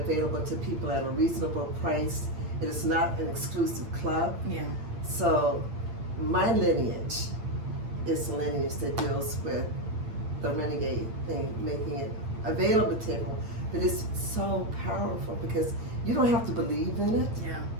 to people at a reasonable price. It is not an exclusive club. Yeah. So my lineage is a lineage that deals with the Renegade thing, making it available to everyone. But it's so powerful because you don't have to believe in it.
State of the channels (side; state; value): left; late; 8.8 ms